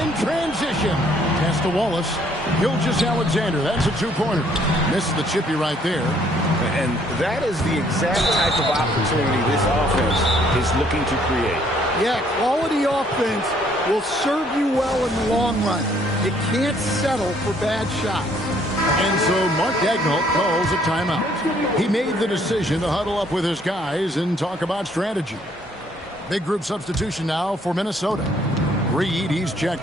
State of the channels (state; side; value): normal; both; correlation 0.64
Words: in transition. Pass to Wallace. Gilgeous-Alexander. That's a 2-pointer. Misses the chippy right there. And that is the exact type of opportunity this offense is looking to create. Yeah, quality offense will serve you well in the long run. You can't settle for bad shots. And so Mark Daigneault calls a timeout. He made the decision to huddle up with his guys and talk about strategy. Big group substitution now for Minnesota. Reed, he's